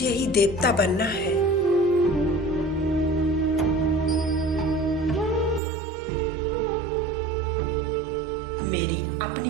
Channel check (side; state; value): left; drops out; at 5.6 s